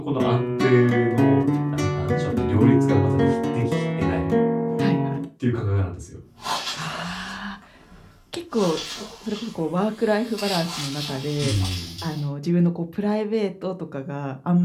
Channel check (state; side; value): identical; both; correlation 1.00